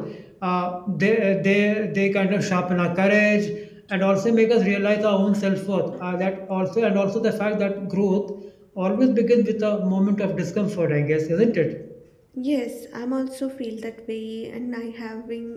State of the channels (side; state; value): both; identical; correlation 1.00